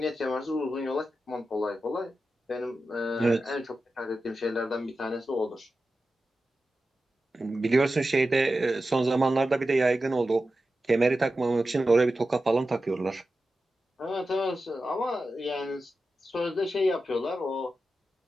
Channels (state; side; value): normal; both; correlation 0.92